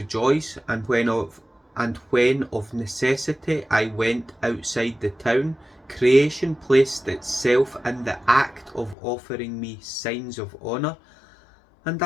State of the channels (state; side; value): drops out; right; at 9.0 s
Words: and when of necessity I went outside the town, creation placed itself in the act of offering me signs of honour, and